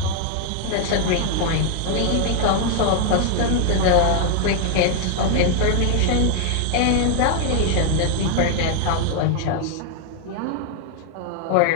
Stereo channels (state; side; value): different; both; correlation 0.00